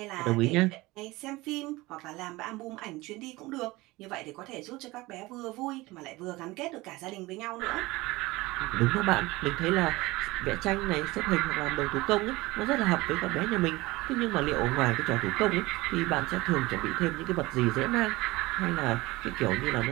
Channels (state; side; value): quieter; left; 20.7 dB